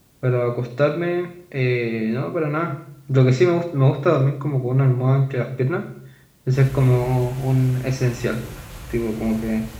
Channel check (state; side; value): identical; both; correlation 1.00